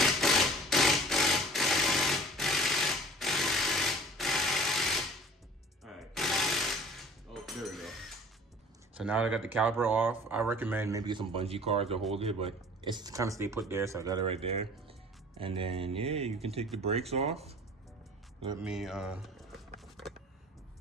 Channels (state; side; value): normal; both; correlation 0.47